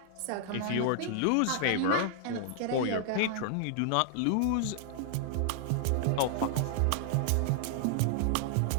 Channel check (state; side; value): different; both; correlation -0.01